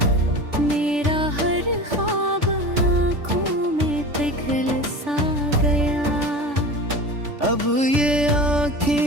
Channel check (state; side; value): late; left; 3.5 ms